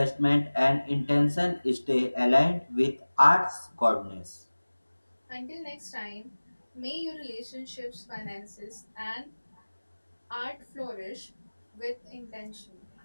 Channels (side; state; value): both; inverted; correlation -1.00